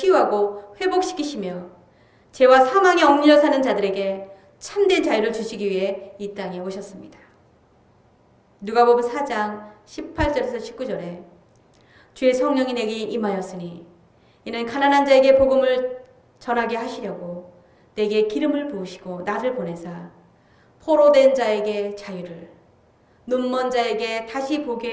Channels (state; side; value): identical; both; correlation 1.00